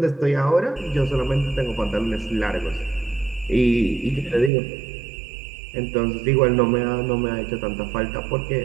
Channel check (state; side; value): drops out; left; at 4.5 s